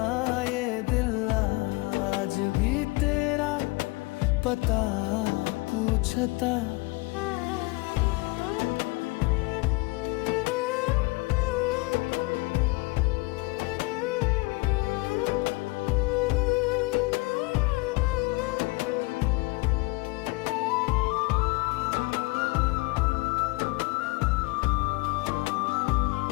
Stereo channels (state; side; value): quieter; right; 24.7 dB